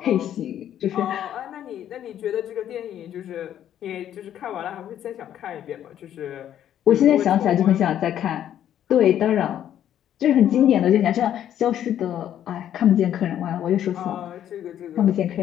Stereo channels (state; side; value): quieter; right; 10.7 dB